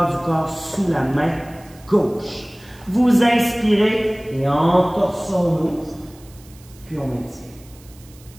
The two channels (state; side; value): noise; right; hiss, 25 dB below the sound